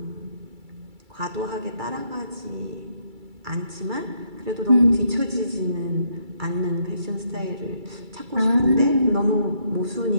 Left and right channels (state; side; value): late; left; 2.3 ms